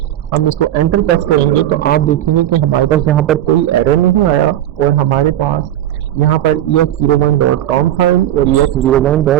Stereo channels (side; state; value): left; quieter; 12.3 dB